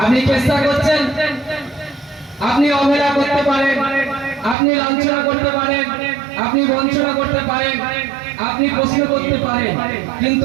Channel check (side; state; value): left; drops out; at 4.5 s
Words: আপনি চেষ্টা করছেন, আপনি অবহেলা করতে পারেন, আপনি লাঞ্ছনা করতে পারেন, আপনি বঞ্চনা করতে পারেন, আপনি প্রশ্ন করতে পারেন,